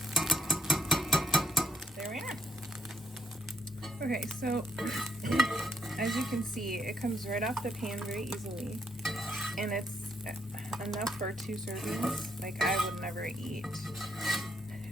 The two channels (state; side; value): normal; both; correlation 0.73